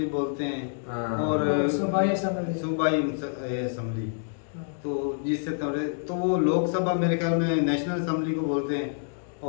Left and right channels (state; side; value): silent; right; digital silence